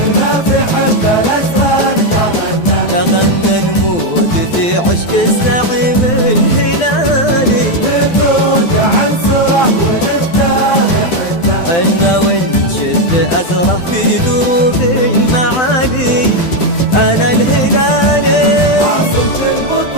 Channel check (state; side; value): late; right; 12 ms